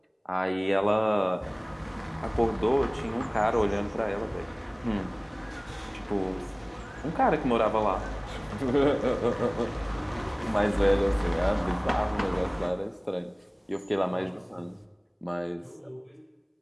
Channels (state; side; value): identical; both; correlation 1.00